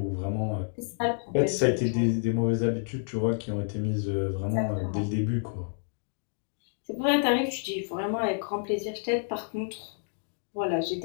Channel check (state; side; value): silent; right; digital silence